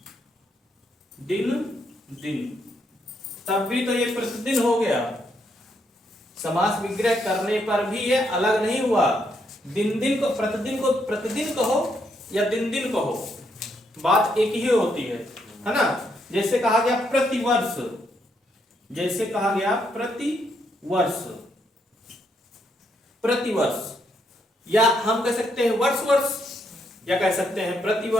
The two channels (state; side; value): normal; both; correlation 0.76